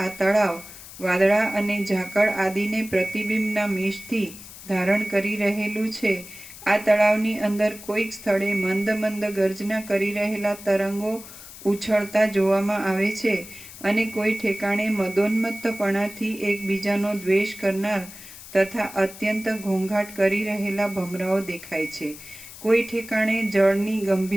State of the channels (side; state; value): left; noise; hiss, 16 dB below the sound